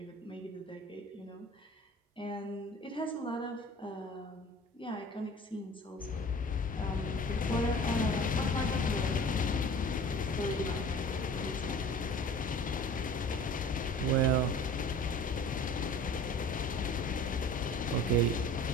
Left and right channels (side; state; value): both; normal; correlation 0.43